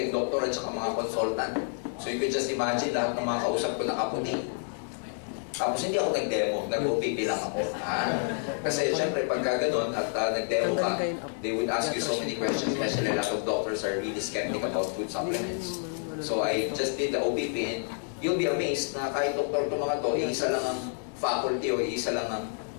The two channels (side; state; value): right; silent; 59 dB below the other